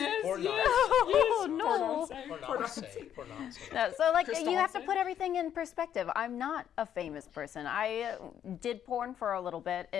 Or not. Oh, no. Or not say. Or not say. No, so, like, Crystal you have to Hansen? put everything in perspective. I'm not a famous person. I did porn for a little bit,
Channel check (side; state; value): right; quieter; 9.8 dB